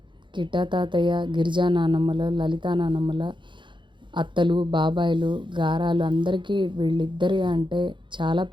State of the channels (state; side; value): late; left; 0.23 ms